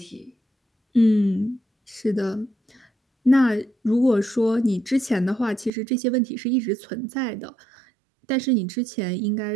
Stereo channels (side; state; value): left; drops out; at 5.7 s